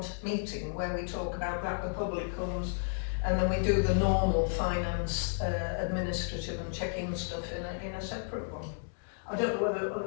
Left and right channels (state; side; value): silent; right; digital silence